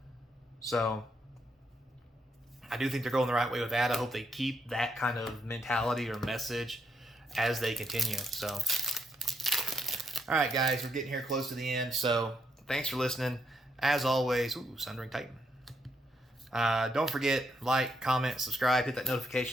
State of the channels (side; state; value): both; normal; correlation 0.77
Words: So I do think they're going the right way with that. I hope they keep that kind of mentality or message as they continue. So, all right, guys, we're getting here close to the end. So thanks for listening. As always, ooh, Sundering Titan. Don't forget, like, comment, subscribe, hit that